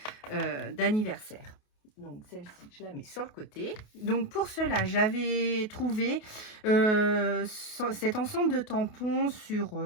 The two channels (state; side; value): late; right; 28 ms